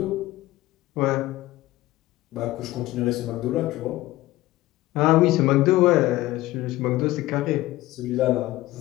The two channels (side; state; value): right; quieter; 17.3 dB